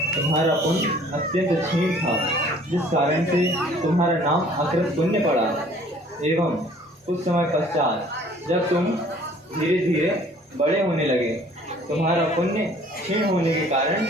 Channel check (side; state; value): both; normal; correlation 0.54